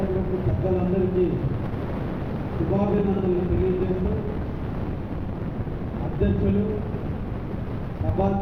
పెద్దలందరికీ శుభాభినందనలు తెలియజేస్తూ, అధ్యక్షులు,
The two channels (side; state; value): both; identical; correlation 1.00